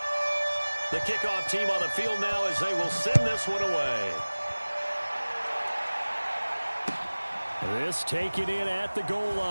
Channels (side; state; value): both; inverted; correlation -1.00